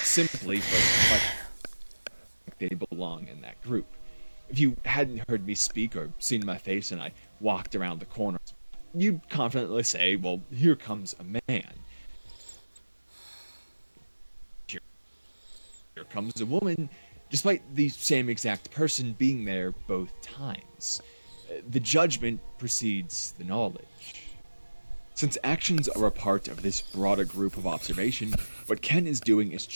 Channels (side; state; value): both; inverted; correlation -1.00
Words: simply, for like they belong in that group. If you hadn't heard me speak or seen my face and I walked around the corner, you'd confidently say, well, here comes a man. Here comes a woman, despite the same exact person being there both times. The judgment precedes the knowledge. Since actions are a part of this broader group of observation, what Ken is doing is